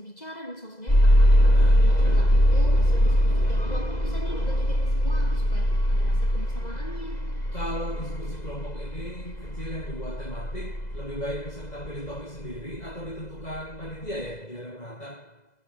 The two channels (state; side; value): late; right; 2.0 ms